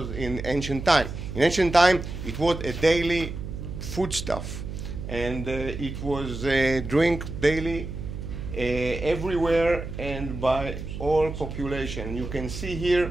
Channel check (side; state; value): right; noise; hum, 8 dB below the sound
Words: in ancient time. In ancient time, it was a daily foodstuff, and it was drink daily everywhere and by all population. You can see here